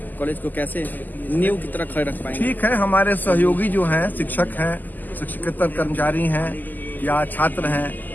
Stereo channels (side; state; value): right; late; 0.085 ms